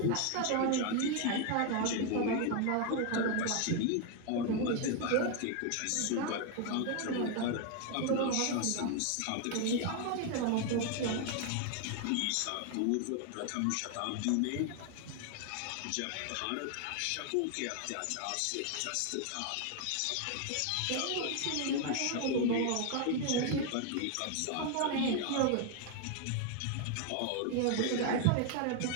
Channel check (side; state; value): both; different; correlation 0.01